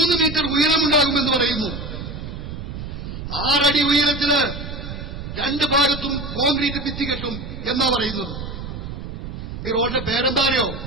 മീറ്റർ ഉയരമുണ്ടാകുമെന്ന് പറയുന്നു. 6 അടി ഉയരത്തിന് 2 ഭാഗത്തും കോൺക്രീറ്റ് ഭിത്തി കെട്ടും എന്നാ പറയുന്നത്. ഈ റോഡിന്റെ പേരെന്താറിയോ?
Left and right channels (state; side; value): noise; right; rumble, 8 dB below the sound